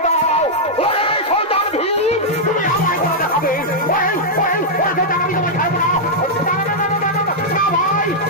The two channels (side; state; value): both; normal; correlation -0.06